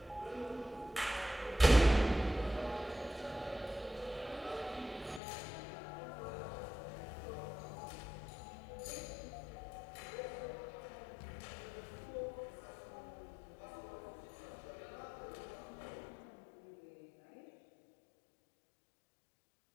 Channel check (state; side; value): drops out; right; at 5.2 s